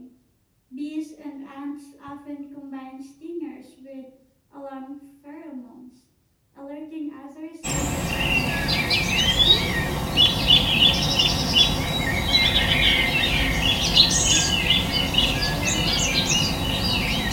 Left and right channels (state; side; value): identical; both; correlation 1.00